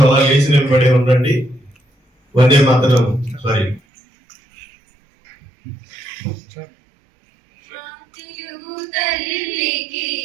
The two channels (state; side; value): drops out; left; at 3.8 s